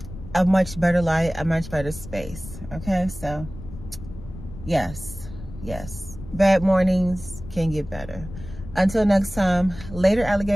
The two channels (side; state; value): left; noise; rumble, 13 dB below the sound